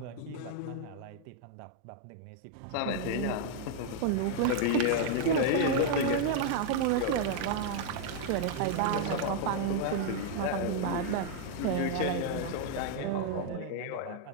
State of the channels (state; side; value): different; both; correlation -0.01